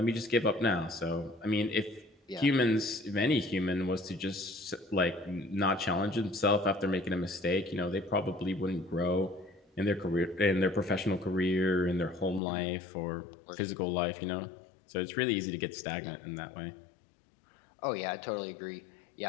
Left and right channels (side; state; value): right; drops out; at 12.4 s